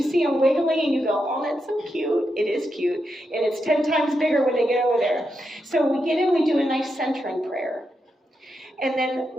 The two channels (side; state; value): both; normal; correlation 0.85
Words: see them wiggly and you go, oh, that's so cute, it is cute, and it's 10 times bigger when they get over there. So we get in, we do a nice centering prayer. And then